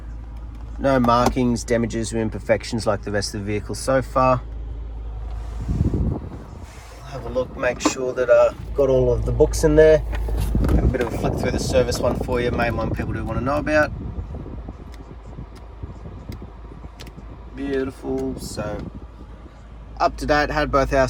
No markings, damages or imperfections like the rest of the vehicle so far. Have a look, make sure that got all of the books in there. Have a bit of a flick through the service one for you, main one people do want to know about. Beautiful. So up to date, had both our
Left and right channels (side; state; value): both; identical; correlation 1.00